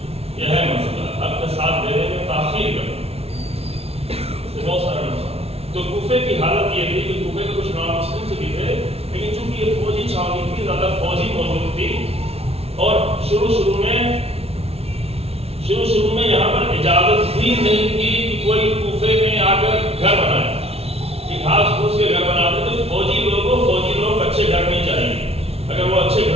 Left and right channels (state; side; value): late; left; 0.30 ms